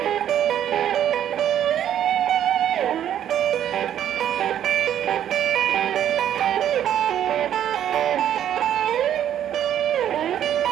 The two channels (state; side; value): quieter; left; 10.5 dB